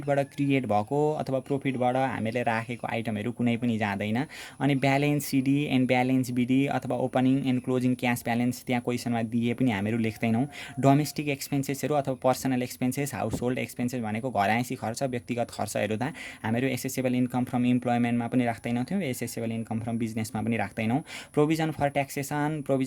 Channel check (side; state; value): both; identical; correlation 1.00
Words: क्रिएट भएको अथवा प्रफिटबाट हामीले राखेको आइटमहरू कुनै पनि जाँदैन। अनि balance CD and balance BD अथवा opening and closing cash balance त्यहाँ क्वेसनमा दिए पनि हामीहरू लेख्दैनौँ। डोमेस्टिक एक्सपेन्सेसहरू अथवा personal expenses, household expenses भनेको घरआइसी खर्च, व्यक्तिगत खर्चहरू त हामीहरू एसेसेबल इन्कम फ्रम इम्प्लोइमेन्टमा पनि राख्दैनौँ, एसेसेबल इन्कम फ्रम बिजनेसमा पनि राख्दैनौँ। Provision for taxation,